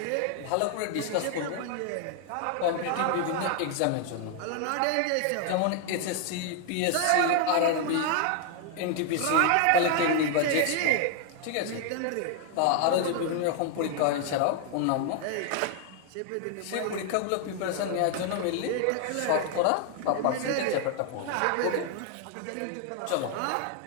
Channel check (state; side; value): different; both; correlation 0.00